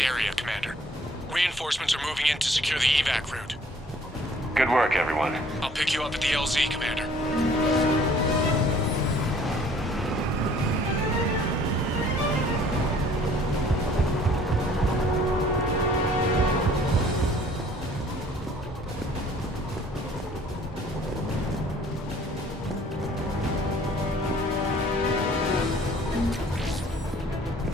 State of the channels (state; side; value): normal; both; correlation 0.56